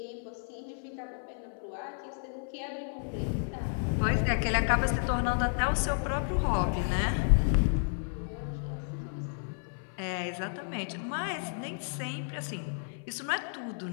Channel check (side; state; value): right; silent; 56 dB below the other